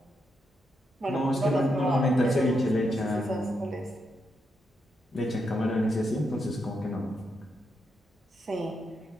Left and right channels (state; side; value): normal; both; correlation 0.82